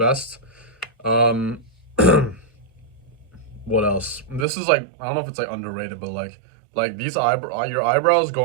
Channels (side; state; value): left; drops out; at 4.5 s